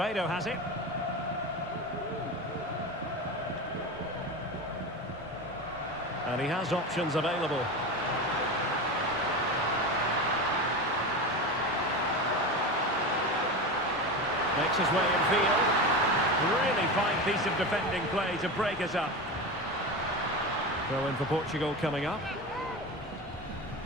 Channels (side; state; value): both; normal; correlation 0.24